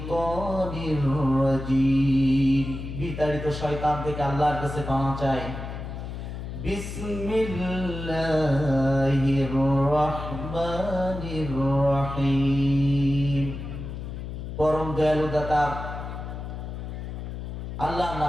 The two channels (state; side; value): noise; left; hum, 7 dB below the sound